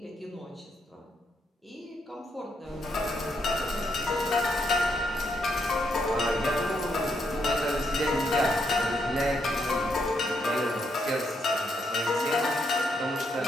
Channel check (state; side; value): normal; both; correlation 0.77